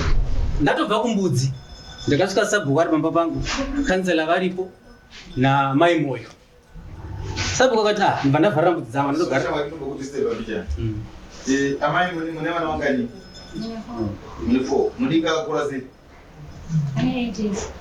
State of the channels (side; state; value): both; identical; correlation 1.00